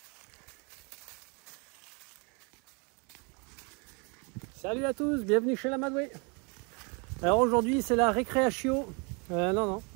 Salut à tous, bienvenue chez l'Amadoué. Alors aujourd'hui c'est la récréation. Non,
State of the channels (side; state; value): left; quieter; 33.0 dB